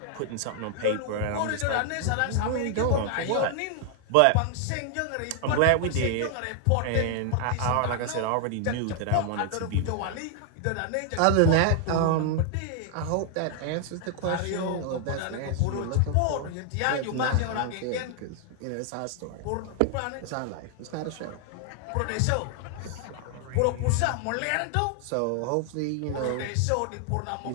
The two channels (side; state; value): both; different; correlation 0.00